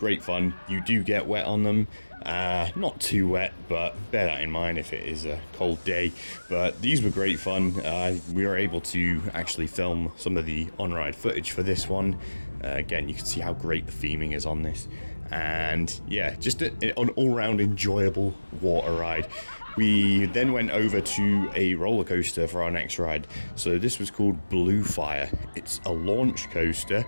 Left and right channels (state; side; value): inverted; both; correlation -1.00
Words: fun. You do get wet on them. Not too wet, but bear that in mind if it is a cold day. But these were great fun. We were able to actually film some of the on-ride footage for this one. Again, you can see how great the theming is on this. And yeah, just an all-round enjoyable water ride. We then went over to a roller coaster for our next ride. So this was called Blue Fire. It's a launch coaster.